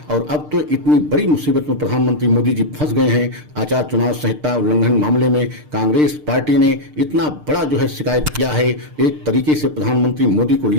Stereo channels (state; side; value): late; left; 6.6 ms